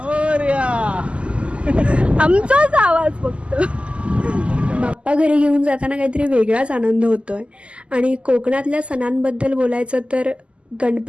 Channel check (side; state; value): left; late; 0.055 ms